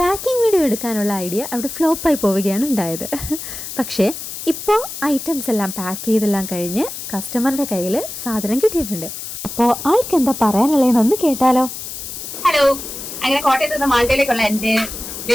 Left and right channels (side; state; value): left; noise; hiss, 9 dB below the sound